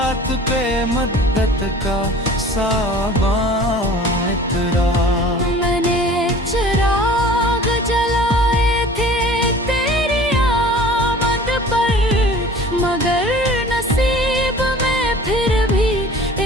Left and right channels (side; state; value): both; normal; correlation 0.45